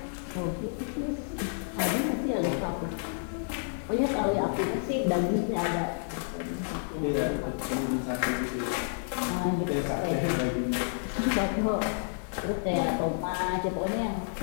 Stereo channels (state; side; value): silent; right; 58 dB below the other